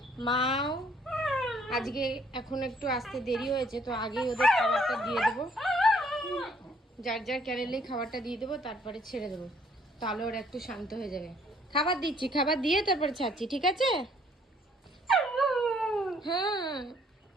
মাও আজকে এখন একটু আসতে দেরি হয়েছে, তো আগেই ওদের খাবারটা দিয়ে দেবো। যার যার ক্যারেলেই খাবারটা দিয়ে দেবো, তারপরে ছেড়ে দেবো, তাহলে ওরা একটু শান্ত হয়ে যাবে। খাবার দিচ্ছি, খাবার দিয়ে তারপরে ছাড়ছি, ঠিক আছে? হ্যাঁ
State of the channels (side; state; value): both; normal; correlation 0.63